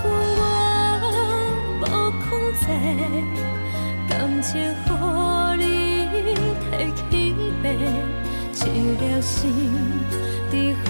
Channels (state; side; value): inverted; both; correlation -1.00